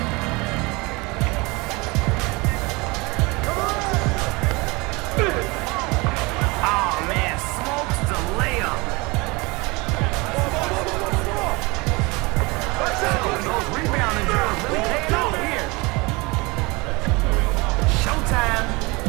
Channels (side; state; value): left; quieter; 25.5 dB